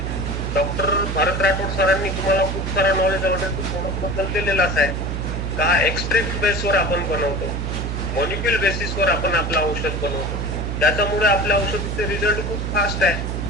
डॉक्टर भारत राठोड सरांनी तुम्हाला खूप सारा नॉलेज ऑलरेडी प्रोडक्ट बद्दल दिलेलाच आहे. का एक्सट्रॅक्ट बेसवर आपण बनवतो, मॉलिक्युल बेसिसवर आपण आपलं औषध बनवतो. त्याच्यामुळे आपल्या औषधीचे रिझल्ट खूप फास्ट आहे.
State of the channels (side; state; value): right; noise; hum, 3 dB below the sound